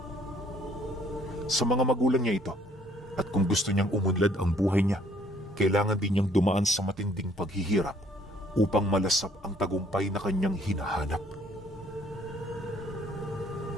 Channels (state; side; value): normal; both; correlation 0.62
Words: Sa mga magulang niya ito, at kung gusto niyang umunlad ang buhay niya, kailangan din niyang dumaan sa matinding paghihirap upang malasap ang tagumpay na kanyang hinahanap.